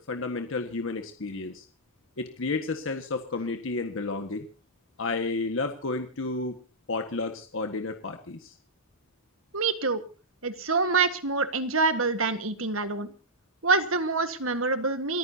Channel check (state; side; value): normal; both; correlation -0.10